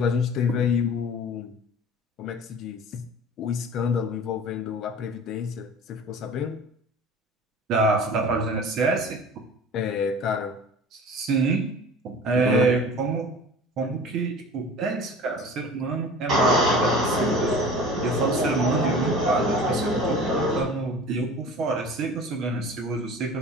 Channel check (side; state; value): both; normal; correlation 0.40